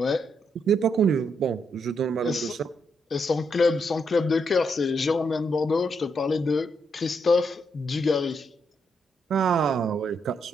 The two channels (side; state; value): both; normal; correlation 0.78